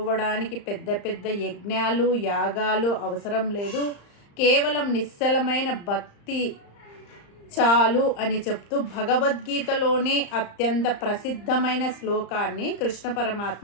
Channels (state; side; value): late; right; 35 ms